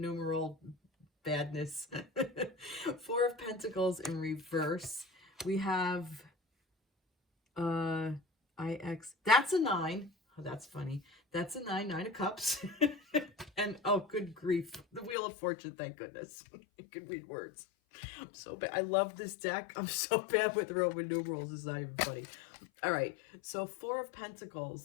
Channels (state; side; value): drops out; right; at 15.2 s